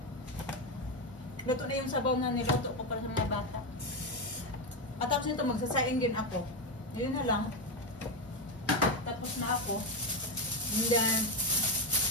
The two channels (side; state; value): both; normal; correlation 0.09